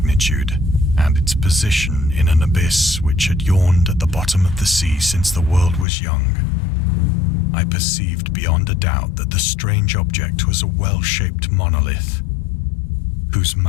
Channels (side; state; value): right; drops out; at 5.9 s